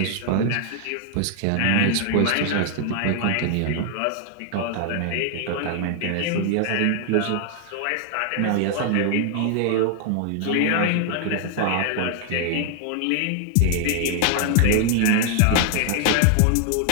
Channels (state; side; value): different; both; correlation 0.00